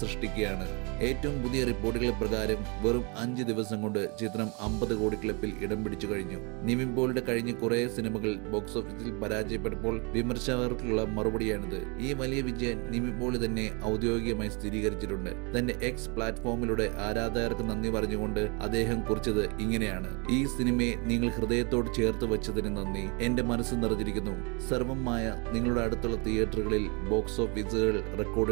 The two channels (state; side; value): quieter; left; 31.9 dB